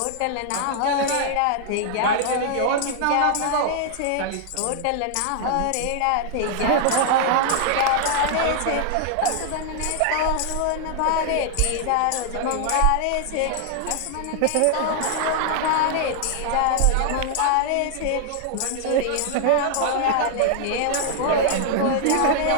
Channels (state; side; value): different; both; correlation 0.00